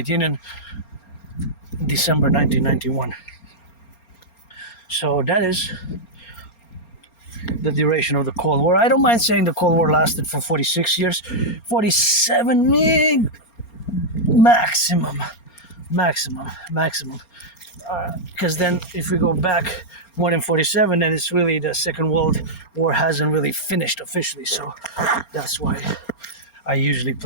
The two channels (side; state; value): right; late; 4.3 ms